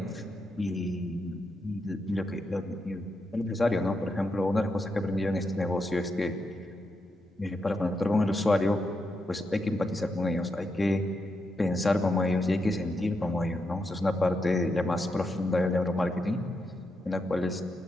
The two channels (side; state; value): both; normal; correlation 0.83